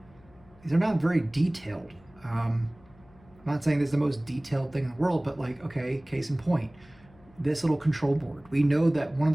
these are not very detailed. I'm not saying this is the most detailed thing in the world, but like, okay, case in point, this little control board. We know that one of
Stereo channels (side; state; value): left; noise; hum, 27 dB below the sound